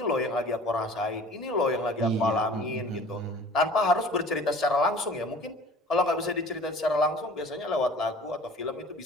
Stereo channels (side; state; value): both; normal; correlation 0.46